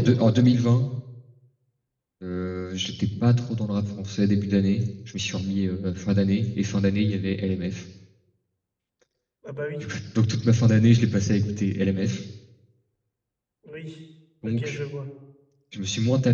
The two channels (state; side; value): identical; both; correlation 1.00